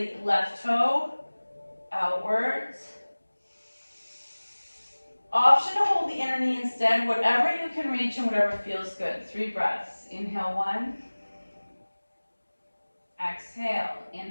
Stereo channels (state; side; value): inverted; both; correlation -1.00